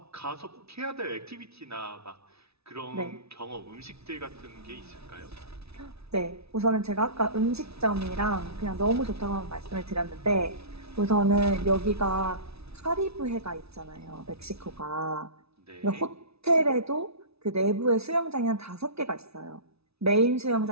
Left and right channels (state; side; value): late; left; 0.79 ms